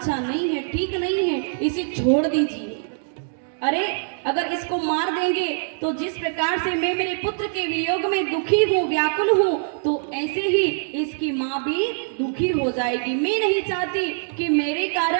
नहीं है, ठीक नहीं है, इसे छोड़ दीजिए। अरे अगर इसको मार देंगे तो जिस प्रकार से मैं मेरे पुत्र के वियोग में दुखी हूँ, व्याकुल हूँ, तो ऐसे ही इसकी माँ भी दुखी हो जाएगी। मैं नहीं चाहती कि मेरे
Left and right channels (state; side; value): silent; left; digital silence